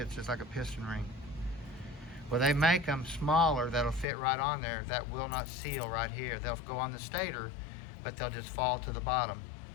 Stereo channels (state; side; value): drops out; right; at 4.0 s